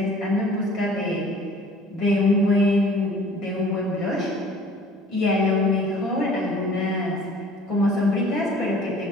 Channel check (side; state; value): both; normal; correlation 0.50